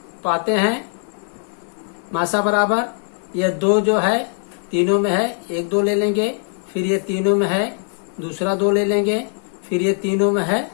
पाते हैं। मासा बराबर ये 2 जो है तीनों में है, 1 2 ले लेंगे, फिर ये तीनों में है दूसरा 2 ले लेंगे, फिर ये तीनों में है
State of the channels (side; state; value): right; silent; 60 dB below the other